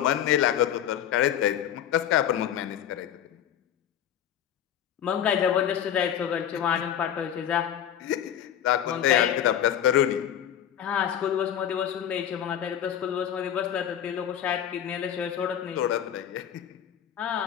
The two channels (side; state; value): right; quieter; 10.0 dB